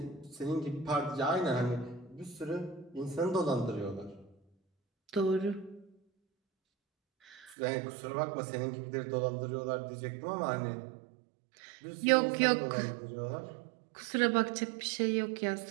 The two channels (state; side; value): drops out; left; at 7.6 s